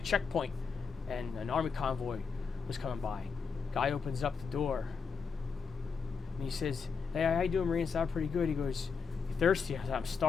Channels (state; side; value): quieter; right; 5.5 dB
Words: checkpoint, and an Army convoy was coming by. Guy opens up the door, and he says, hey, how you doing, Marine? Sound pretty good. He goes, you thirsty? I said, I'm